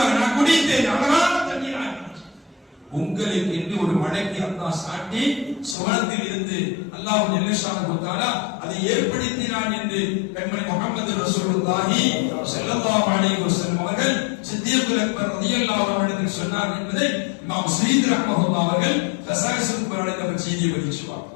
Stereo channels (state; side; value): drops out; right; at 5.8 s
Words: நான் குடித்தேன், அழகான தண்ணீர். உங்களுக்கு என்று ஒரு மழைக்கு அல்லாஹ் சாட்டி சுவனத்தில் இருந்து அல்லாஹ் ஜல்ல ஷானஹு தஆலா அதை ஏற்படுத்தினான் என்று கண்மணி முஹம்மது ரசூலுல்லாஹி ஸல்லல்லாஹு அலைஹி வஸல்லம் அவர்கள் சித்திகுல் அக்பர் ரலியல்லாஹு அன்ஹு சொன்னார் என்பதை இமாம் ஸயீத் ரஹ்மத்துல்லாஹி அவர்கள் கஸாயிஸுல் குர்ஆனில் செய்தி பதிச்சுவார்.